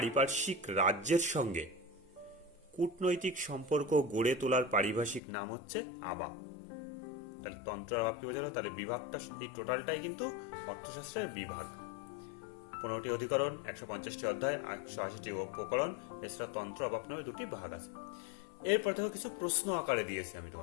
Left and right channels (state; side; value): drops out; right; at 5.2 s